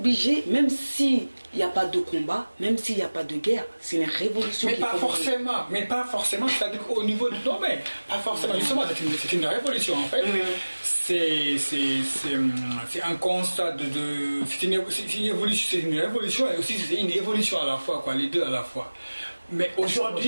même s'il n'y a pas de combat, même s'il n'y a pas de guerre, c'est une révolution. Mais pas forcément, c'est-à-dire qu'au niveau du domaine, pas forcément, justement, c'est une révolution en fait. C'est un constat c'est une révolution et aussi c'est une évolution à la fois, quoi, les deux à la fois. Mais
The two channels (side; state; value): both; inverted; correlation -1.00